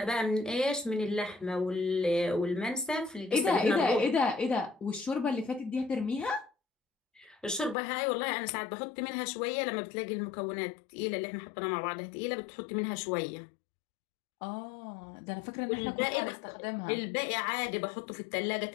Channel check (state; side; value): drops out; right; at 7.8 s